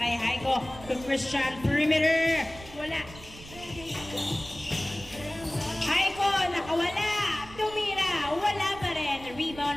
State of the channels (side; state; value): right; noise; rumble, 17 dB below the sound